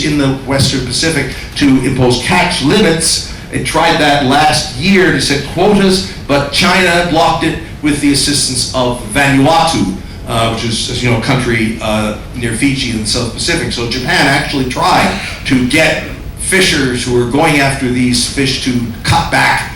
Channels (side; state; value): both; identical; correlation 1.00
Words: in the Western Pacific to impose catch limits. It tried that last year to set quotas, but China blocked it with the assistance of Vanuatu, which is, as you know, a country near Fiji in the South Pacific. So Japan actually tried to get fishers who were going after these fish to cut